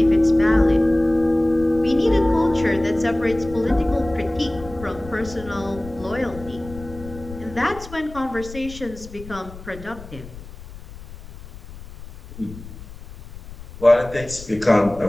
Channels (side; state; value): left; noise; rumble, 15 dB below the sound